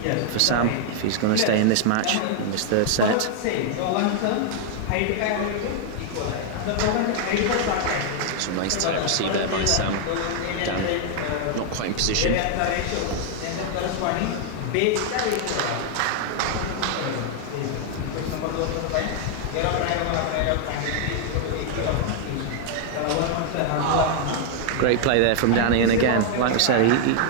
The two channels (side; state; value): both; different; correlation 0.00